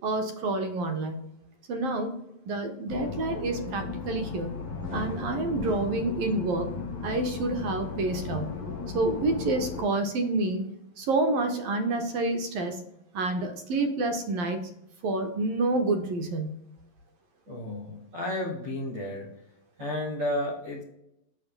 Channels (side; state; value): left; late; 11 ms